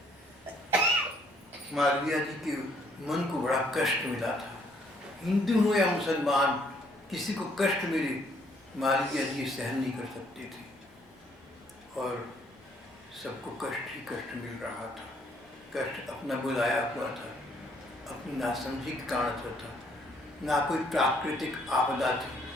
मालवीय जी के मन को बड़ा कष्ट मिला था। हिंदू हो या मुसलमान, किसी को कष्ट मिले मालवीय जी सहन नहीं कर सकते थे, और सबको कष्ट ही कष्ट मिल रहा था। कष्ट अपना बुलाया हुआ था, अपनी नासमझी के कारण से था। ना कोई प्राकृतिक आपदा थी,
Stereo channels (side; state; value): both; normal; correlation 0.66